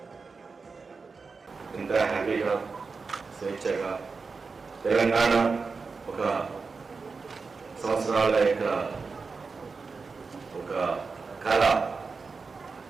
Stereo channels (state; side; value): quieter; left; 4.6 dB